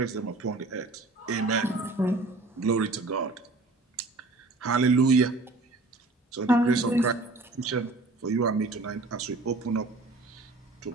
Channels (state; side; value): quieter; left; 3.3 dB